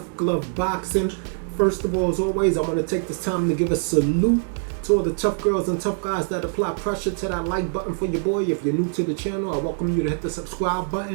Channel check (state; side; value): silent; left; 58 dB below the other